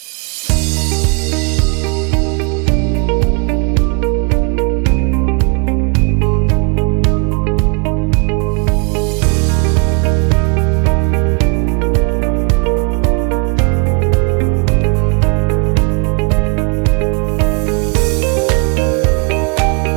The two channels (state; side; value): quieter; left; 34.0 dB